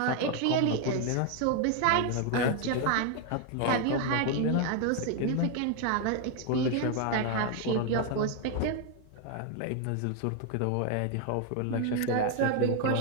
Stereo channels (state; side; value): different; both; correlation 0.01